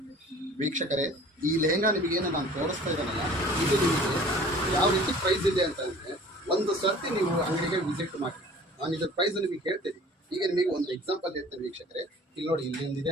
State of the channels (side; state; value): both; normal; correlation 0.47